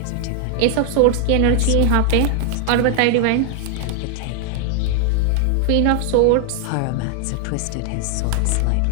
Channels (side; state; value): both; different; correlation 0.00